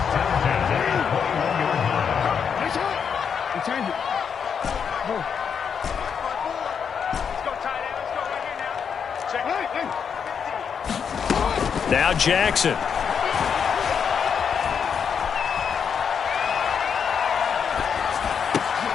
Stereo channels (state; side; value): quieter; right; 7.0 dB